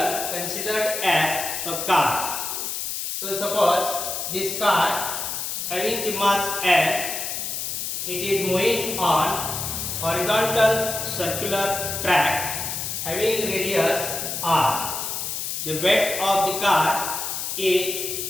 considered as a car. So suppose this car having the mass M, it is moving on horizontal circular track having radius R. The weight of the car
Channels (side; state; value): left; noise; hiss, 3 dB below the sound